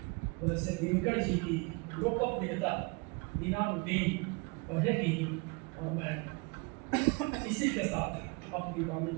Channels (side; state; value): left; quieter; 29.9 dB